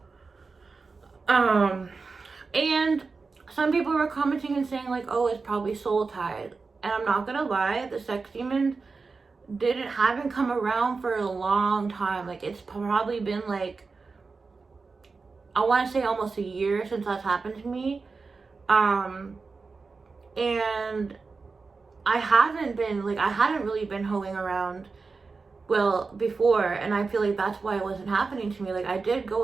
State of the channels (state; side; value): quieter; left; 4.4 dB